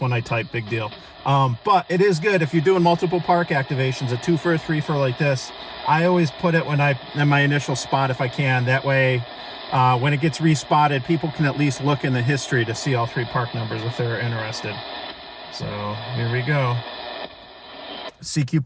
I type, big deal. But it is good if you're doing multiple park activations, a 2-fer, 3-fer like this. I always put it in my initial spot if I can. That way, when it gets respotted, people can at least look in the history to see all three park numbers if they're interested. So here we go. CQ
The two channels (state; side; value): identical; both; correlation 1.00